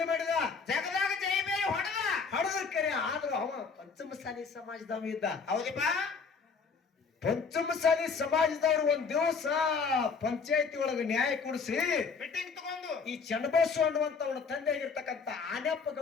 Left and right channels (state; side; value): quieter; right; 5.2 dB